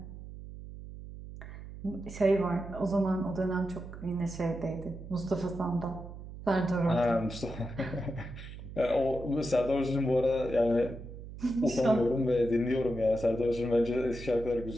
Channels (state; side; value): noise; right; hum, 12 dB below the sound